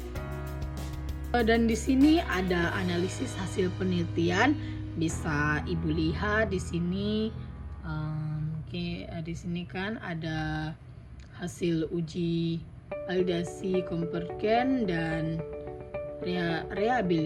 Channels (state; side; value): identical; both; correlation 1.00